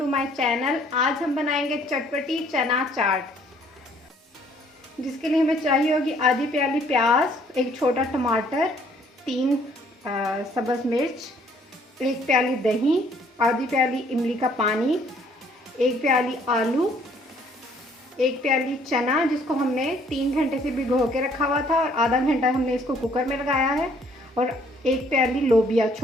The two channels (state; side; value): normal; both; correlation 0.62